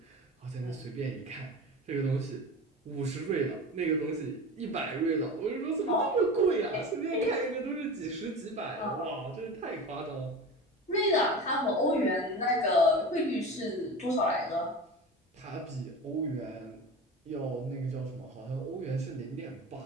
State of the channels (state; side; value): normal; both; correlation 0.31